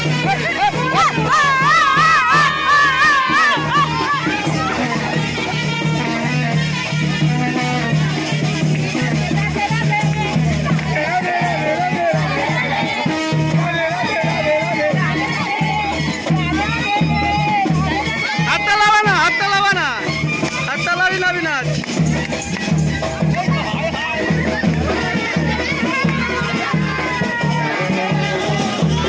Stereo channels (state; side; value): identical; both; correlation 1.00